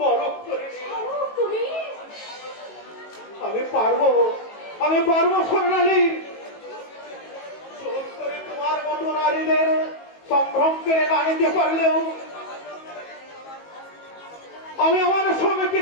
করে নিই। স্বরূপ, তুমি আমি পারবো স্বর্ণালী। জোর করে তোমার মতো নারীদের সম্ভ্রম কেড়ে না নিতে পারলেও আমি আমার সব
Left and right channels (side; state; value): right; late; 19 ms